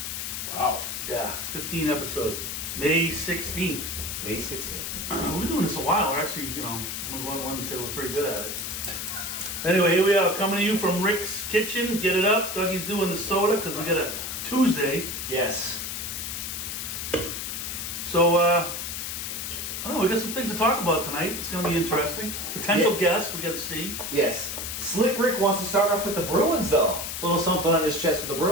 Wow. Yeah, 15 episodes. May 16th. May 16th. We've been doing this a while. We're actually, I'm going to go on a limb and say we're pretty good at it. Anyway, here we are, coming to you from Rick's Kitchen. Get it up. Dougie's doing the soda because we got a Tuesday. Yes. So, I don't know. We got some things to talk about tonight. It's going to be interesting. Potential guests we got to see. Yes. Slick Rick wants to start off with the Bruins, though. A little something on his chest with the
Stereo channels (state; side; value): noise; left; hiss, 5 dB below the sound